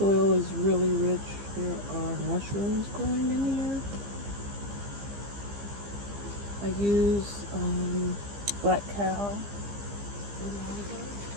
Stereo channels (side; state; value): left; late; 15 ms